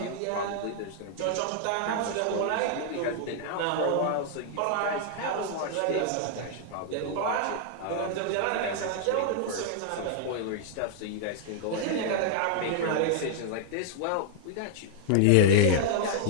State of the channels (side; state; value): both; different; correlation 0.00